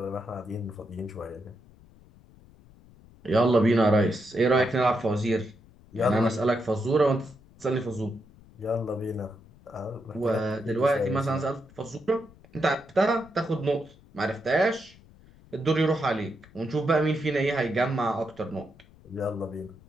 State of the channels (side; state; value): left; noise; rumble, 25 dB below the sound